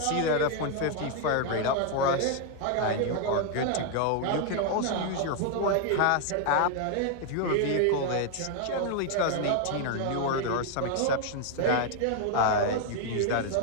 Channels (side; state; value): both; different; correlation 0.00